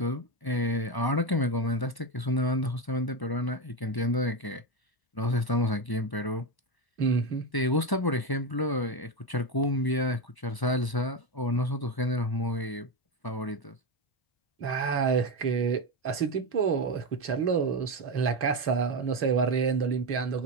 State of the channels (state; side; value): late; right; 1.0 ms